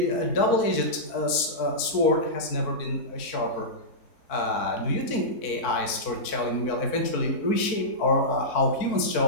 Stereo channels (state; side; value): late; right; 4.5 ms